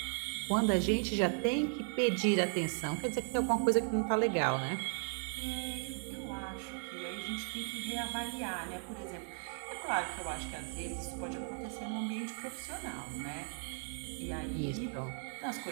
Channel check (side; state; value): left; silent; 53 dB below the other